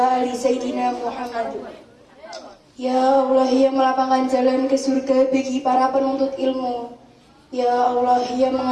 ali sayyidina Muhammad. Ya Allah yang melapangkan jalan ke surga bagi para penuntut ilmu. Ya Allah yang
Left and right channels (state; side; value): identical; both; correlation 1.00